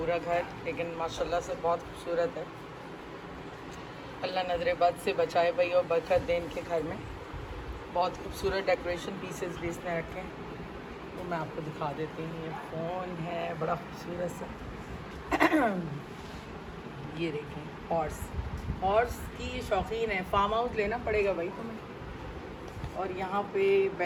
घर, लेकिन माशाल्लाह से बहुत खूबसूरत है। अल्लाह नजर बद से बचाए भाई और बरकत दे इनके घर में। बहुत खूबसूरत डेकोरेशन पीसेस भी इसने रखे हैं, तो मैं आपको दिखा देती हूँ। ये फ़ोन है बड़ा खूबसूरत सा ये देखें हॉर्स की ये शौकीन है, फार्म हाउस लेना पड़ेगा भाई तुम्हें। और यहाँ पे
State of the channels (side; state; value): both; identical; correlation 1.00